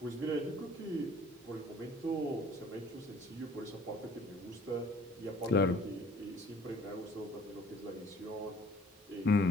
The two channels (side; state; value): both; normal; correlation 0.54